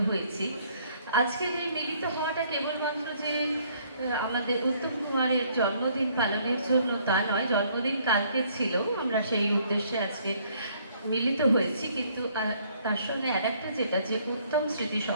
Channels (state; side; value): inverted; both; correlation -0.64